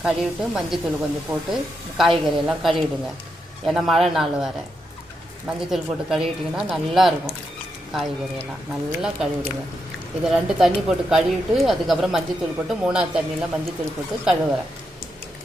கழுவிட்டு மஞ்சத்தூள் கொஞ்சம் போட்டு காய்கறியெல்லாம் கழுவிடுங்க. ஏன்னா மழை நாள் வர மஞ்சத்தூள் போட்டு கழுவிட்டிங்கன்னா நல்லாயிருக்கும். காய்கறியெல்லாம் நல்லா கழுவிடுங்க. இதை 2 தண்ணி போட்டு கழுவிட்டு அதுக்கப்புறம் மஞ்சத்தூள் போட்டு 3ஆவது தண்ணியில் மஞ்சத்தூள் போட்டு கழுவுறேன்.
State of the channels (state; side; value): normal; both; correlation 0.84